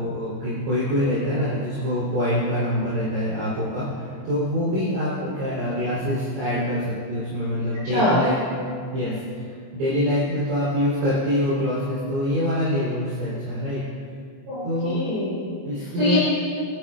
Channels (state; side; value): late; left; 22 ms